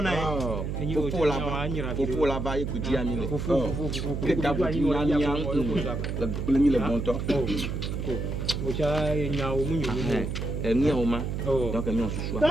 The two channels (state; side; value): noise; right; hum, 3 dB below the sound